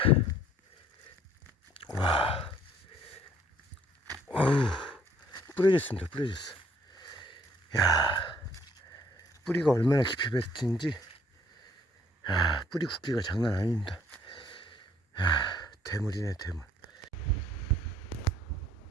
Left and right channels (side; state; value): both; normal; correlation 0.61